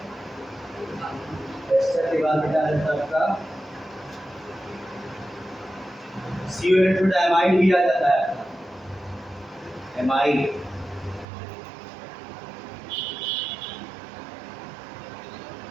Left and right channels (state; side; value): drops out; left; at 11.2 s